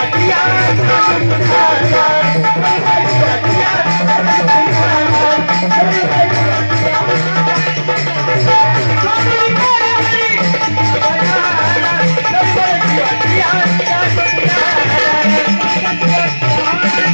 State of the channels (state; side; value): inverted; both; correlation -1.00